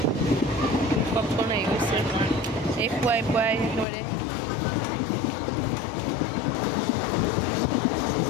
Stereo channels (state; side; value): drops out; right; at 3.9 s